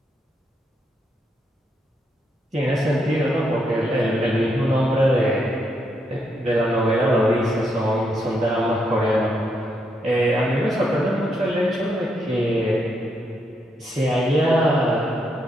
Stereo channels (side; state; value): both; normal; correlation 0.78